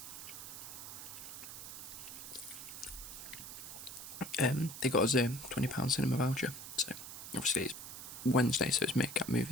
They got us a £20 cinema voucher, so obviously it's Wednesday, so it's Make Up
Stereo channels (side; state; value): right; noise; hiss, 10 dB below the sound